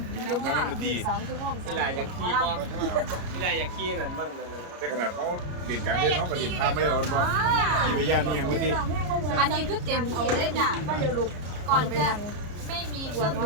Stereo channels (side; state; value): left; late; 33 ms